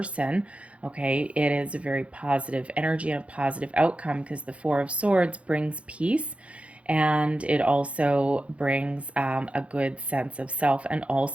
Okay, it is a very positive energy and a positive outcome, because the Four of Swords brings peace, and it also brings a good sense of self, and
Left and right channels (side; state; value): left; late; 0.062 ms